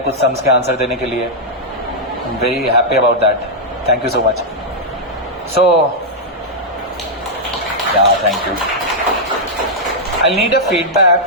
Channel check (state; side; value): normal; both; correlation -0.05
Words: सम्स के आंसर देने के लिए। I am very happy about that, thank you so much. So yeah thank you. I need a feedback